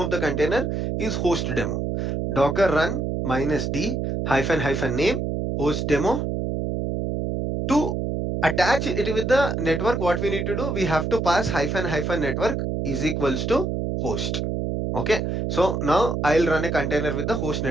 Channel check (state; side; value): noise; right; hum, 1 dB below the sound